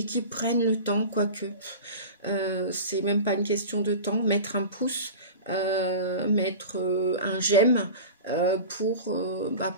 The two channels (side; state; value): both; inverted; correlation -0.33